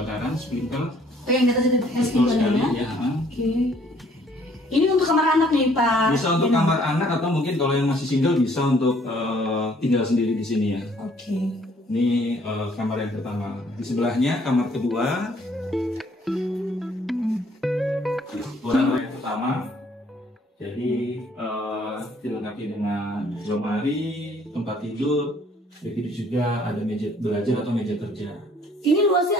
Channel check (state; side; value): normal; both; correlation 0.61